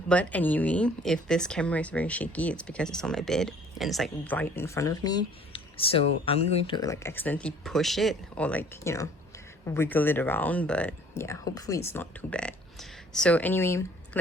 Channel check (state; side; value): normal; both; correlation 0.54